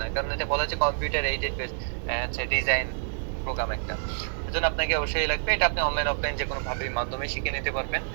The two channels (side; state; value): left; silent; digital silence